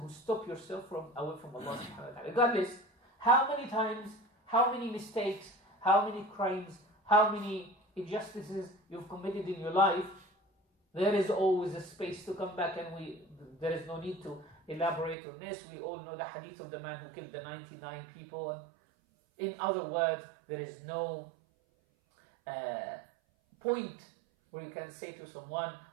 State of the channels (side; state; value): left; drops out; at 15.2 s